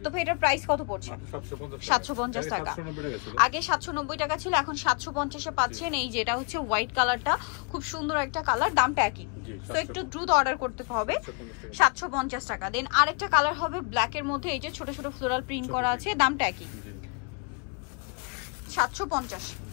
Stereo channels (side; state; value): right; quieter; 37.0 dB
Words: তো এটার প্রাইস কত পড়ছে? 750 টাকা। আগে 790 টাকা ছিল, এখন 750-এ পাচ্ছেন। এই যেটা হচ্ছে হোয়াইট কালারটা, খুব সুন্দর একটা কালার, দামটা একই। তো একটু দ্রুত অর্ডার করতে হবে। 750 টাকা। দেন আরেকটা কালার হবে ব্ল্যাক এর মধ্যে, এই যে ছোট ছোট ফ্লোরাল প্রিন্ট করা আছে, দামটা একই, 750।